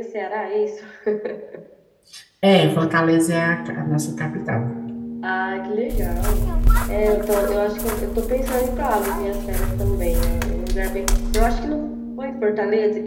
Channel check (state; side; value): identical; both; correlation 1.00